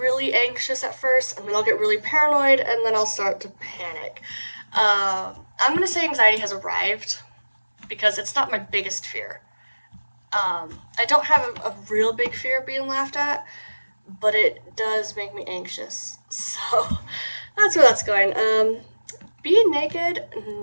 anxious at first, and then I'll get really paranoid, and then I'll start to panic. I'm gonna say anxiety has arrived, because it's not my biggest fear. I don't have a real big fear of being laughed at, but it does make me anxious. So, that's where that's going. Being naked,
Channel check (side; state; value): both; inverted; correlation -1.00